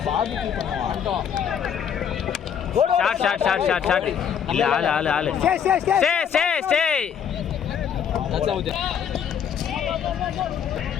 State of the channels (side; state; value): right; quieter; 8.2 dB